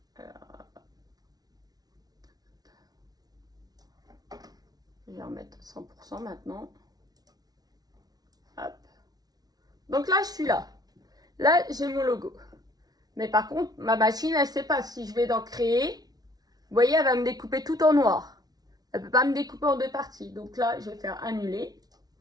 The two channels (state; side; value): late; left; 0.19 ms